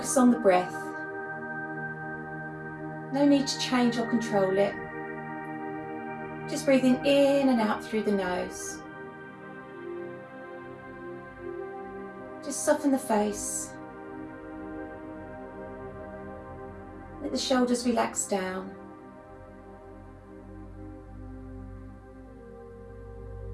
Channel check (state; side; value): identical; both; correlation 1.00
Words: on the breath. No need to change or control it. Just breathing in and out through the nose. Just soften the face. Let the shoulders relax down.